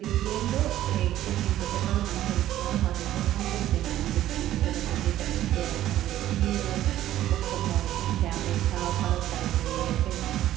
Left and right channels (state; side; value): quieter; left; 13.2 dB